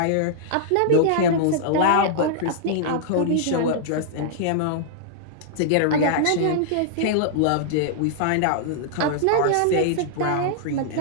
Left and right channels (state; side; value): different; both; correlation -0.02